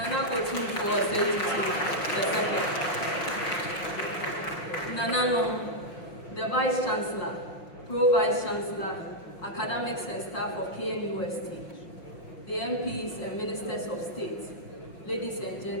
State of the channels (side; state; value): right; late; 5.8 ms